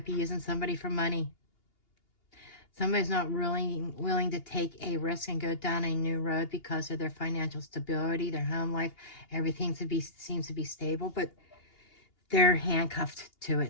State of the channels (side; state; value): right; late; 2.8 ms